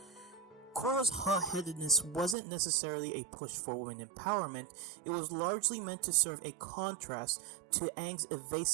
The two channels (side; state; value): left; drops out; at 2.4 s